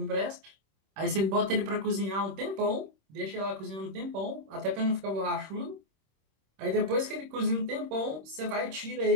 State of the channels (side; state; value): left; late; 26 ms